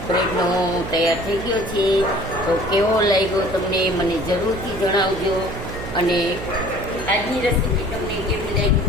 બ્રેડનો તૈયાર થઈ ગયો છે. તો કેવો લાગ્યો તમને મને જરૂરથી જણાવજો, અને આજની રેસીપી તમને કેવી લાગી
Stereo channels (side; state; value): right; noise; hum, 9 dB below the sound